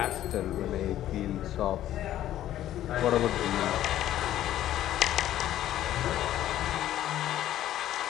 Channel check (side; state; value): right; quieter; 12.7 dB